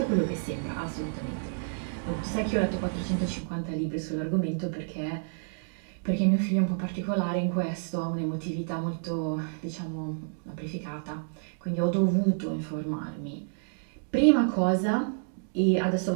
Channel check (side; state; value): left; silent; digital silence